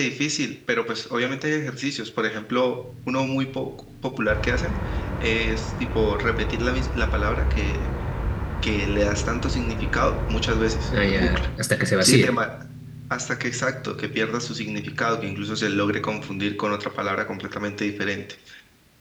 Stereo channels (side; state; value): both; identical; correlation 1.00